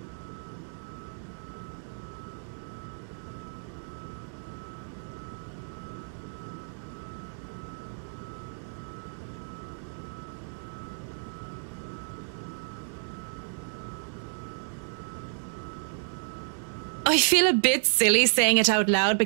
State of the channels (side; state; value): left; silent; digital silence